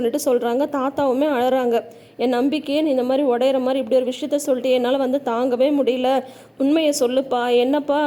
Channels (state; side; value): identical; both; correlation 1.00